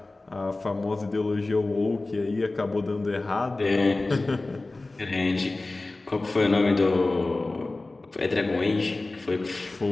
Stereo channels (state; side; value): quieter; right; 3.1 dB